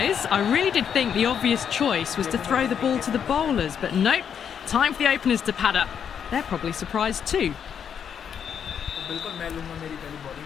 I really did think the obvious choice was to throw the ball to the bowlers, but nope. Time for the openers to pad up. They're probably surprised too.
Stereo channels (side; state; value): right; quieter; 7.9 dB